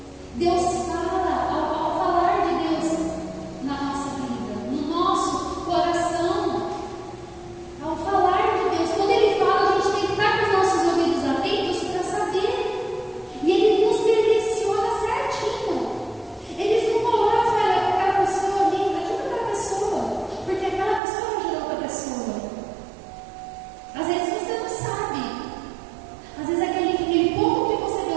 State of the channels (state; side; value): drops out; left; at 21.0 s